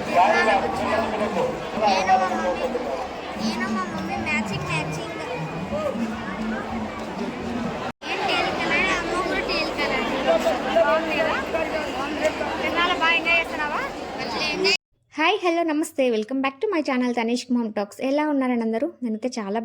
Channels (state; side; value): identical; both; correlation 1.00